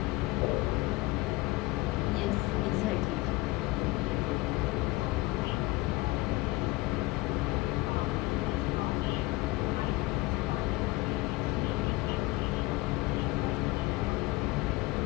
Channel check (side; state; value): right; quieter; 20.9 dB